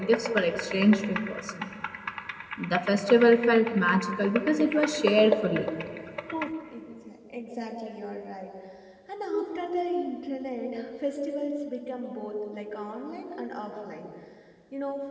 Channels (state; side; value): identical; both; correlation 1.00